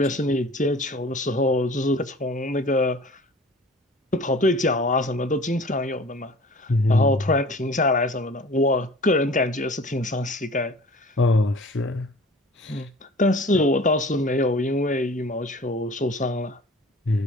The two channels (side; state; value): both; normal; correlation 0.44